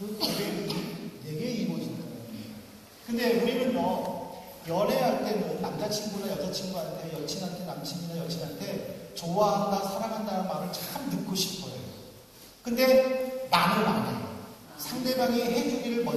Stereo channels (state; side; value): identical; both; correlation 1.00